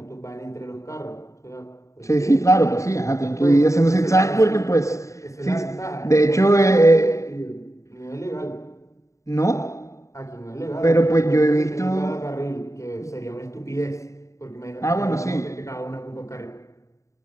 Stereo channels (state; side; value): late; right; 0.15 ms